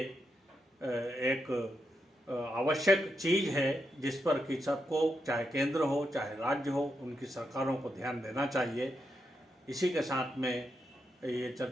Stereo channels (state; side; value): normal; both; correlation 0.84